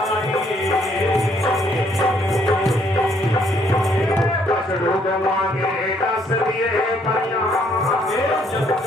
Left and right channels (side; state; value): both; normal; correlation 0.67